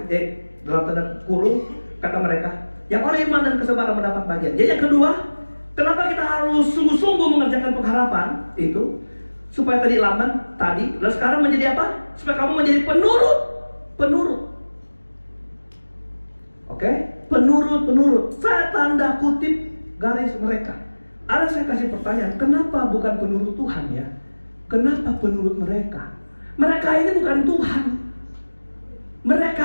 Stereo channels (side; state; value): both; inverted; correlation -1.00